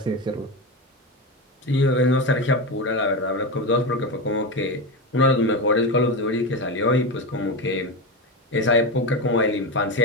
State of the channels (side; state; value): both; normal; correlation 0.17